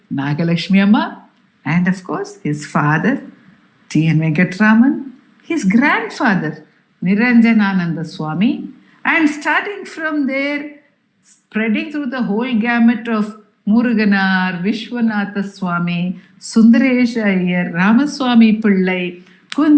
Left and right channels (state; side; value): identical; both; correlation 1.00